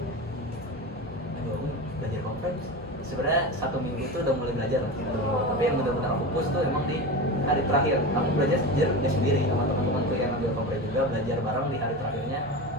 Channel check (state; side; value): normal; both; correlation 0.25